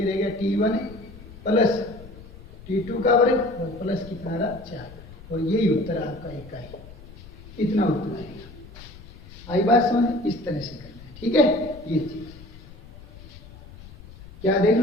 रह गया t1 प्लस t2 का वर्ग और प्लस कितना रहा? 4, और यही उत्तर आपका एक का है, इतना उत्तर आएगा। आई बात समझ? इस तरह से करना है, ठीक है। ये चीज क्या देख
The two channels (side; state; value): left; noise; rumble, 18 dB below the sound